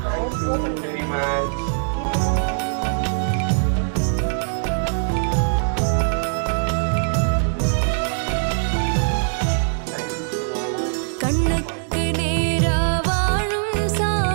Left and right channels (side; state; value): left; silent; digital silence